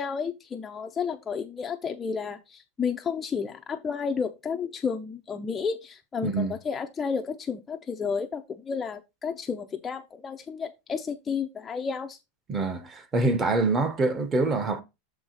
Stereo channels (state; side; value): normal; both; correlation 0.54